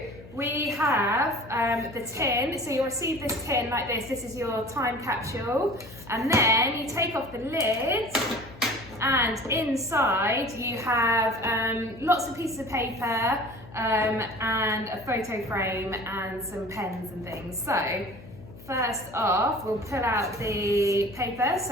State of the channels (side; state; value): left; noise; hum, 18 dB below the sound